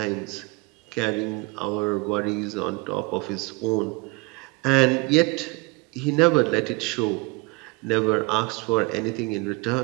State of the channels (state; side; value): quieter; left; 26.8 dB